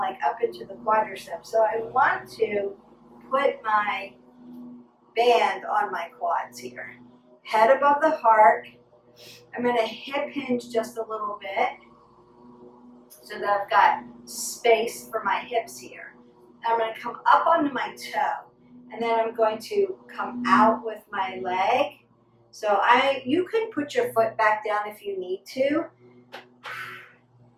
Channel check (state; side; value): identical; both; correlation 1.00